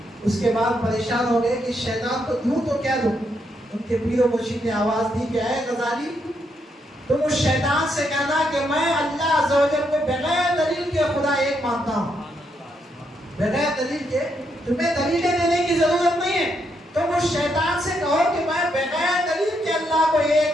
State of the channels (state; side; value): normal; both; correlation 0.78